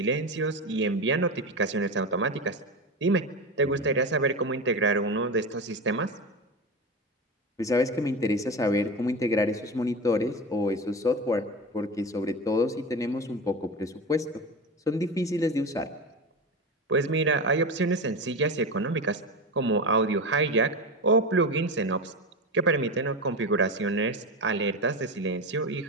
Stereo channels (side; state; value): both; normal; correlation 0.23